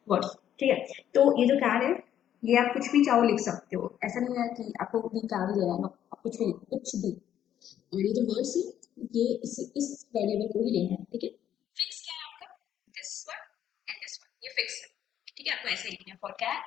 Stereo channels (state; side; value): quieter; right; 10.5 dB